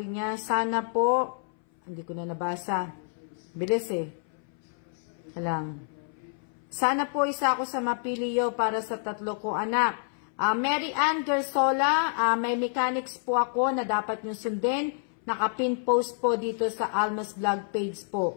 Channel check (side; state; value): right; silent; 59 dB below the other